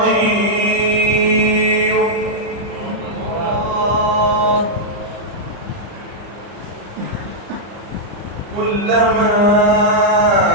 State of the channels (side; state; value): left; late; 34 ms